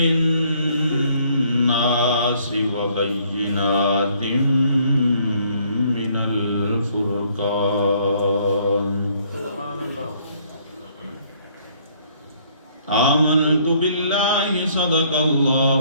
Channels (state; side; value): inverted; both; correlation -0.64